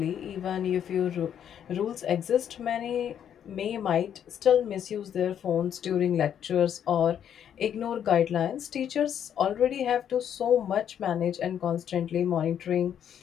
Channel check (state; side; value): quieter; right; 9.2 dB